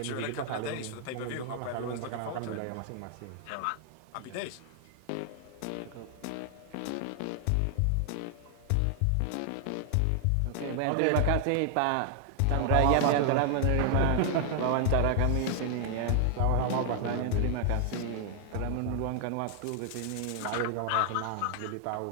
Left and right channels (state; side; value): different; both; correlation 0.00